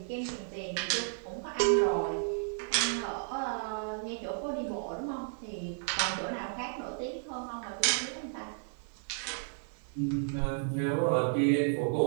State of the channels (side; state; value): left; silent; digital silence